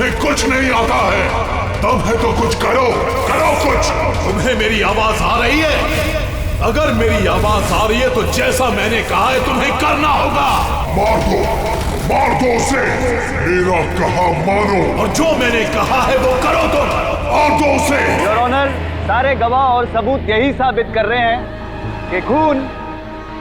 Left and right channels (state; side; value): identical; both; correlation 1.00